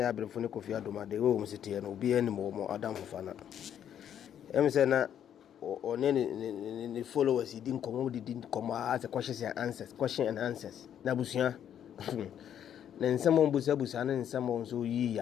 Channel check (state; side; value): quieter; right; 9.6 dB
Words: been for Kofi Adoma, the home city, and will be any more Adam Fana. Emsena or any followers, he didn't come as a question and answers. Nabusia. Na someone busa na someone so yi